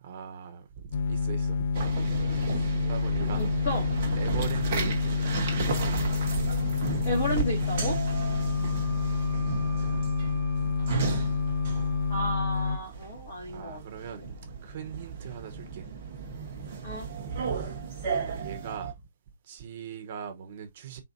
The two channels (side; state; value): both; inverted; correlation -0.68